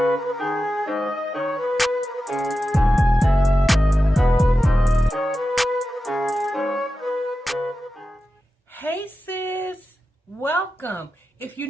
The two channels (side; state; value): both; normal; correlation 0.92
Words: sis, welcome. If you're